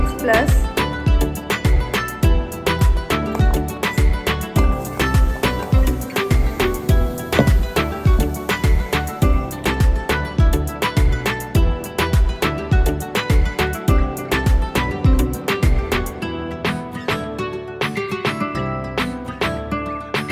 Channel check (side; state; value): both; identical; correlation 1.00